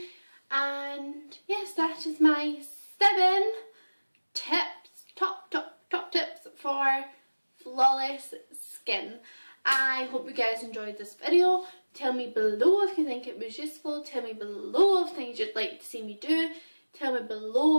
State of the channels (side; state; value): both; inverted; correlation -1.00